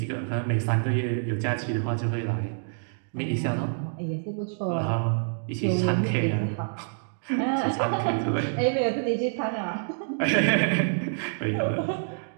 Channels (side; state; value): left; silent; digital silence